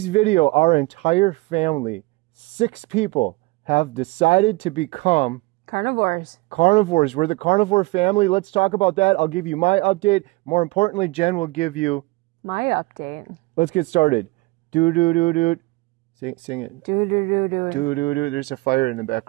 video, our entire family, 6 people, have decided to become carnivores. Carnivores. We're the carnivore family. Let's talk about that. I'll give you my update. More importantly, Jen will give you my update. Let's get started. Do-do-do-do. Sing it. Do-do-do-do. Do-do-do. There's a fire in the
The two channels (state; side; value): quieter; left; 23.2 dB